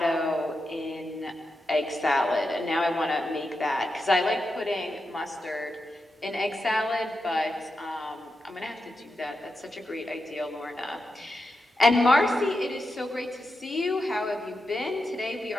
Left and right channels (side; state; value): both; normal; correlation 0.88